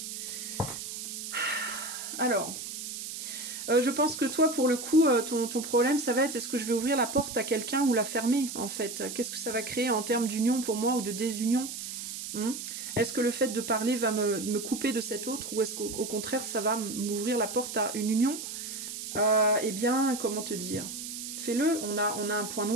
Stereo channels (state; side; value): noise; right; hiss, 7 dB below the sound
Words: Alors, je pense que toi, pour le coup, ton problème, ça va être, est-ce que je vais ouvrir la porte à quelqu'un ou la fermer, en fait? Qu'est-ce que ça va créer en termes d'union pour moi ou de désunion? Est-ce que le fait de parler va me couper de cet autre, ou est-ce qu'au contraire, ça va m'ouvrir la porte à une union? Eh bien, comment te dire? Fais-le, on a un point